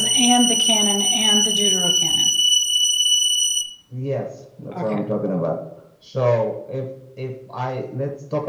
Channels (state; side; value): identical; both; correlation 1.00